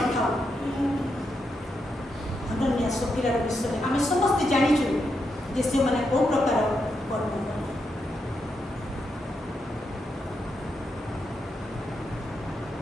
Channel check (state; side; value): normal; both; correlation 0.83